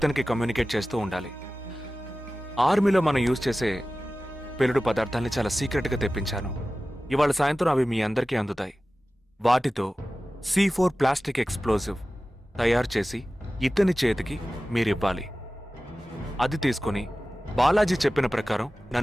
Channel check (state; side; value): normal; both; correlation 0.96